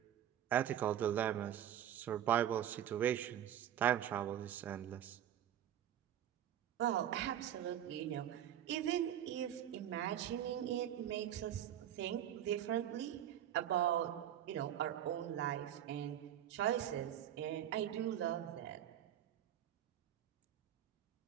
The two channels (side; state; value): left; quieter; 10.8 dB